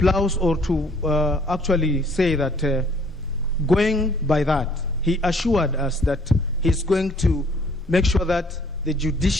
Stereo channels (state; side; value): normal; both; correlation 0.60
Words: or to actually say that going by that, he assured us that he's going to make sure that the